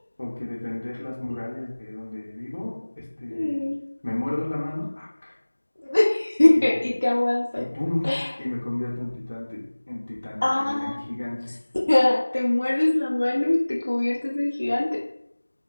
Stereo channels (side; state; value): both; inverted; correlation -1.00